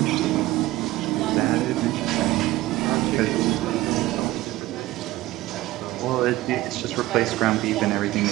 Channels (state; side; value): quieter; left; 17.3 dB